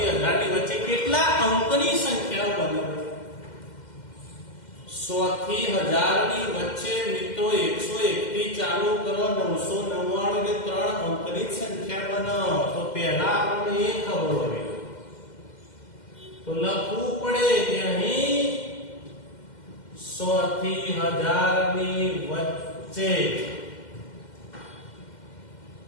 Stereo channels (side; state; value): right; late; 2.1 ms